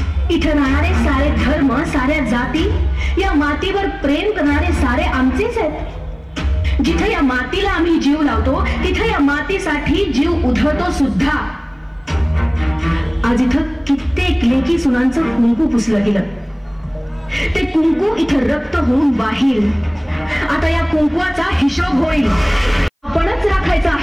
इथे राहणारे सारे धर्म, साऱ्या जाती, या मातीवर प्रेम करणारे सारे आमचेच आहेत. जिथे या मातीला आम्ही जीव लावतो तिथे या मातीसाठी जीव उधळतो सुद्धा. आज इथं कित्येक लेकी सुनांचं कुंकू पुसलं गेलं. ते कुंकू इथं रक्त होऊन वाहील. आता या कुंकवाचा हिशोब होईल. आपणच राखायचा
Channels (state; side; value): identical; both; correlation 1.00